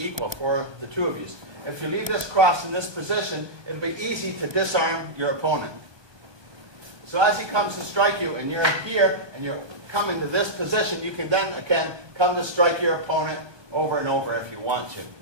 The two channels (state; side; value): late; left; 1.3 ms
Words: equal for the two of you. If you leave this cross in this position, it'll be easy to disarm your opponent. So as he comes to strike you, and you're here, and you're coming to this position, you can then, again, come to strike your opponent over and over if you want to.